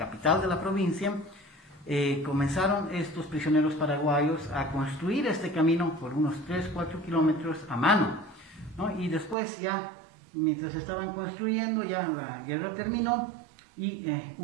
de la provincia, comenzaron estos prisioneros paraguayos a construir este camino por unos 3-4 kilómetros a mano, ¿no? Y después ya, mientras estaban construyendo, ya la guerra terminó y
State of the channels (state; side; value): drops out; left; at 9.3 s